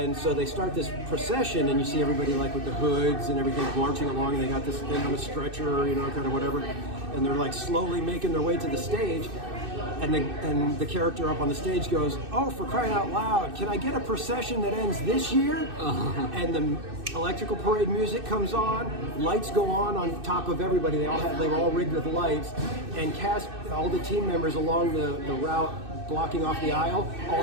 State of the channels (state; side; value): late; left; 2.6 ms